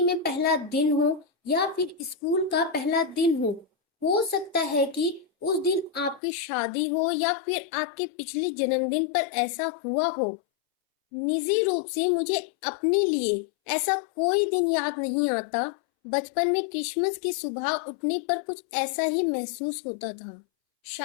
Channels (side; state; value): right; drops out; at 6.2 s